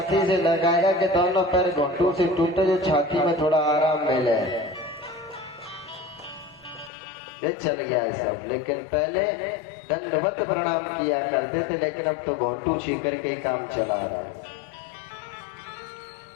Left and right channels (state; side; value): drops out; right; at 6.9 s